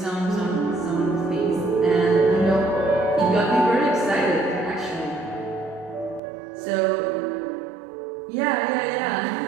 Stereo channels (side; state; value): left; drops out; at 6.2 s